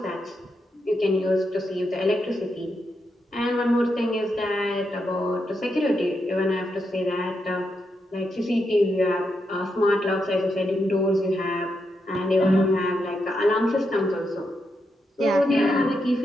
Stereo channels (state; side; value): normal; both; correlation 0.83